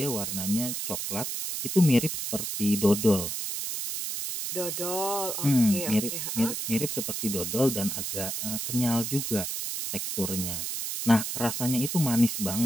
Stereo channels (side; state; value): right; noise; hiss, 3 dB below the sound